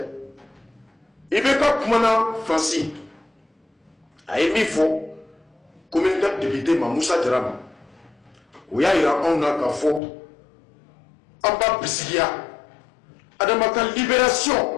Ibeka Kumana Franci. A émis faux, comme une date député Mamoussa Dram. Où y a un akafo. Amba Bisigia. Adamaka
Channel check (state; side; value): drops out; right; at 10.0 s